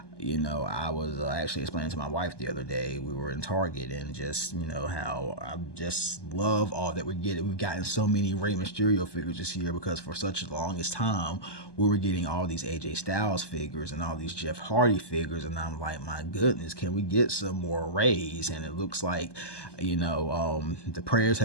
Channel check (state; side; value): late; right; 1.2 ms